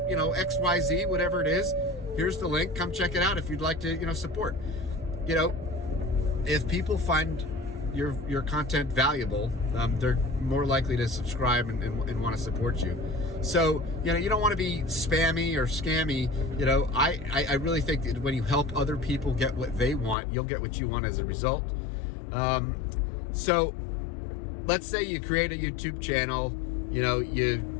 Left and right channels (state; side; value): drops out; right; at 20.2 s